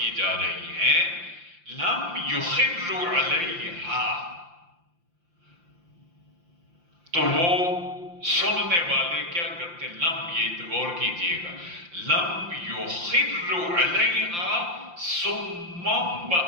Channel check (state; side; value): late; left; 5.8 ms